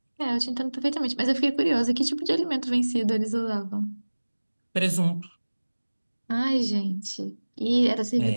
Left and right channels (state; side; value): inverted; both; correlation -1.00